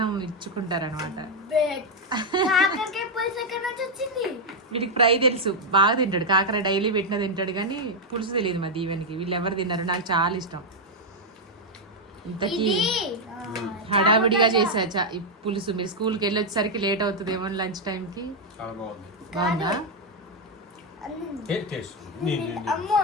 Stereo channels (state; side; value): normal; both; correlation 0.00